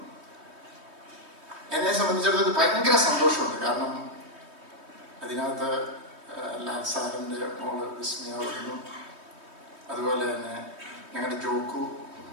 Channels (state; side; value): late; left; 3.2 ms